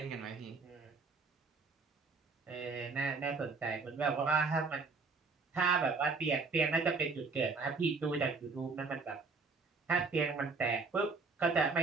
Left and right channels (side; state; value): left; quieter; 4.3 dB